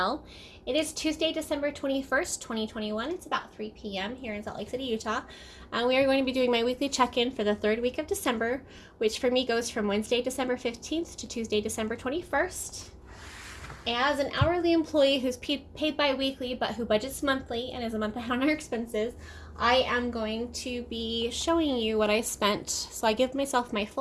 It is Tuesday, December 21st, 2021. It's about 3 p.m. here in Salt Lake City, Utah. We are going to be doing my weekly check-in for the third week of December, which for me goes from Wednesday, December 15th to Tuesday, December 21st. As an hourly employee who's paid bi-weekly but who budgets monthly and is a month ahead on our expenses, I am going to be showing you what I spent. So I give myself my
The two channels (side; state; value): both; identical; correlation 1.00